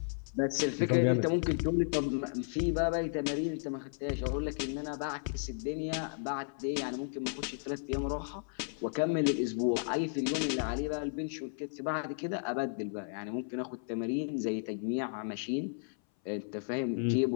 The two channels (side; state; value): right; silent; 55 dB below the other